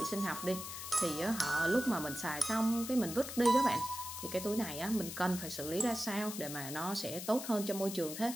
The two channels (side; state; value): left; noise; hiss, 8 dB below the sound